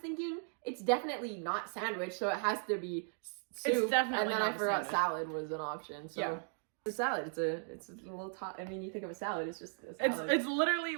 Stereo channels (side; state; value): left; silent; 53 dB below the other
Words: it's definitely not sandwich, so it has to be soup. It's definitely and then not I forgot sandwich. salad was an option. So yeah. It's a salad. It's a little I mean, you think of a salad, it's just a salad. It's literally